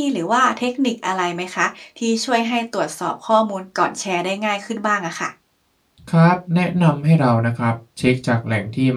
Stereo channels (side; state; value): both; identical; correlation 1.00